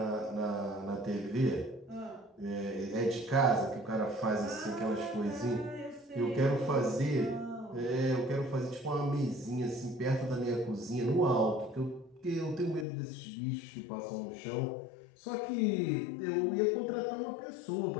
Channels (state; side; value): drops out; right; at 12.9 s